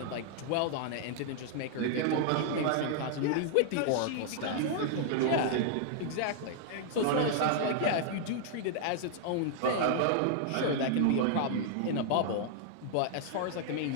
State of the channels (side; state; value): both; different; correlation -0.01